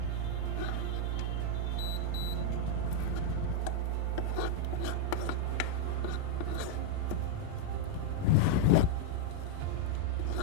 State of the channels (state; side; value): different; both; correlation 0.00